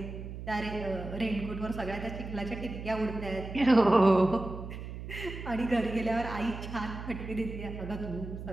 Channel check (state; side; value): noise; right; hum, 9 dB below the sound